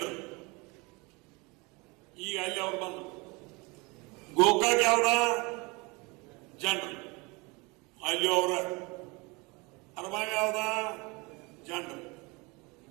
ಈಗ ಅಲ್ಲಿ ಅವ್ರು ಬಂದ್ರು. ಗೋಕಾಕ್ ಯಾವ್ದ? ಜನರು. ಅಲ್ಲಿ ಅವರ ಅರಬಾವಿ ಯಾವ್ದ? ಜನರು.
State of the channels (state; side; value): quieter; left; 26.7 dB